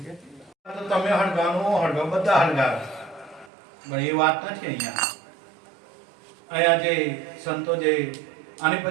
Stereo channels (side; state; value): left; drops out; at 3.5 s